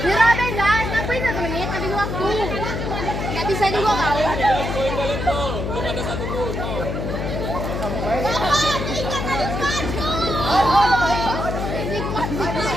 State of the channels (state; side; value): noise; left; hum, 3 dB below the sound